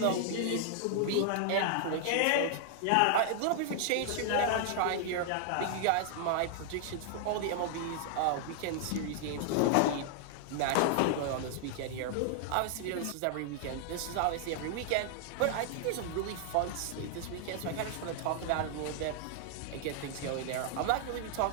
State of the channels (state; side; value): different; both; correlation -0.01